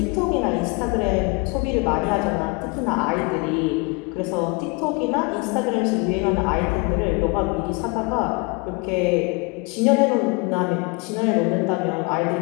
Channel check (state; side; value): quieter; right; 29.7 dB